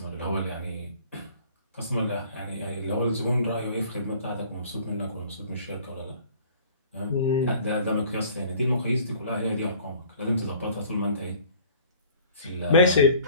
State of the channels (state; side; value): inverted; both; correlation -0.51